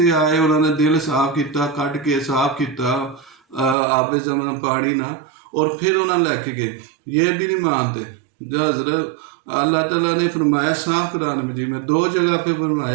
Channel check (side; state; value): left; drops out; at 3.8 s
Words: आए, उन्होंने दिल साफ किया, कट के साफ किया आपे जमन पानी ना, और फिर उन्होंने लैके गए। ये भी नहीं मानते। जो हजरत अल्लाह ताला ने फरमाया साफ कुरान मजीद में 2 जगह पे